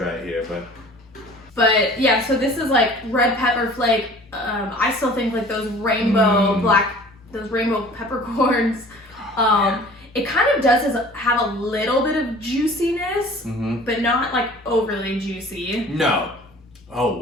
it here, But yeah, so this is like red pepper flake. I still think like those rainbow peppercorns. It kind of does have a little bit of juiciness, but not like overly juicy. No. Oh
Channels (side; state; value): both; normal; correlation 0.47